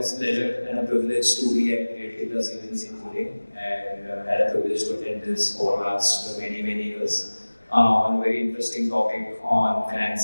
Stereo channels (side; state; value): both; inverted; correlation -1.00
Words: a pleasure and a privilege to be at Creative Plus events in Pune and had a privilege to attend this over the last many years. On a very interesting topic on